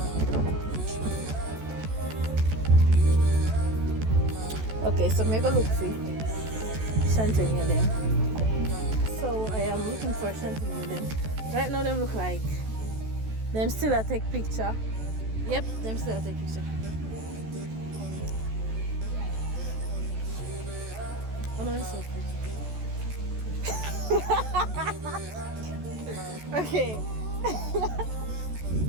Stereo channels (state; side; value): late; left; 14 ms